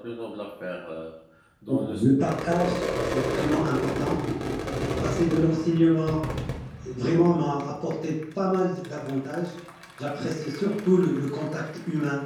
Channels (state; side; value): identical; both; correlation 1.00